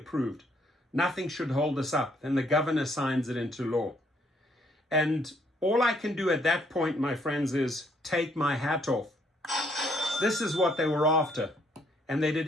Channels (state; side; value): normal; both; correlation 0.68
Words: Nothing should hold us up. Then the governor signs it into law. And all I can do at that point, my friends, is take my hat off. This is what they were after. And they